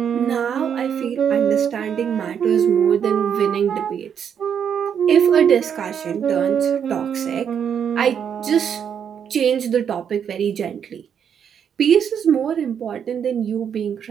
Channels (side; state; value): left; quieter; 8.0 dB